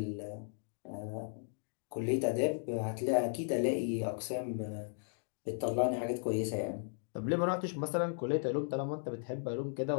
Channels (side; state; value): right; silent; digital silence